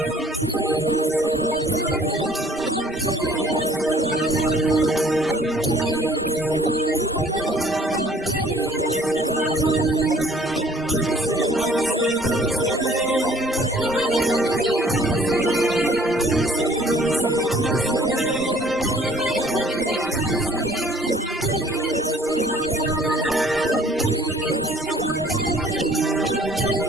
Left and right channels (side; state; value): both; normal; correlation 0.57